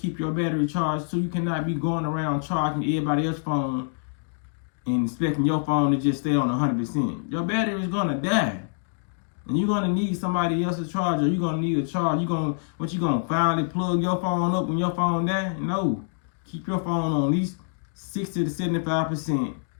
your battery charged, so you cannot be going around charging everybody else's phone and expecting your phone to just stay on 100%. Your battery is gonna die, and you're gonna need somebody else's charger. You're gonna need a charge. You gonna finally plug your phone up when your phone die? No, keep your phone on at least 60 to 75%,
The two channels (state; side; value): silent; right; digital silence